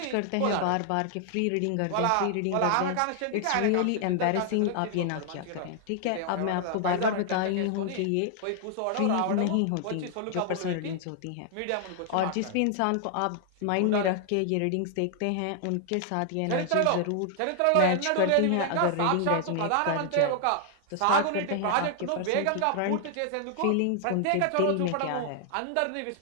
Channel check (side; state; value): both; different; correlation 0.00